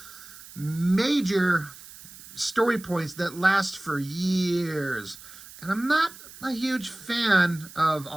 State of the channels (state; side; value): noise; right; hiss, 18 dB below the sound